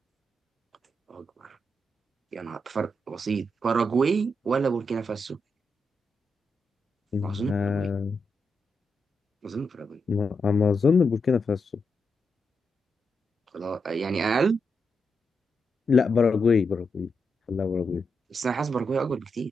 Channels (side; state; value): both; normal; correlation 0.85